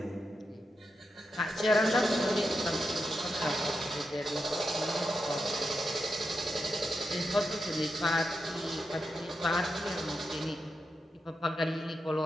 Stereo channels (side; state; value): both; normal; correlation 0.87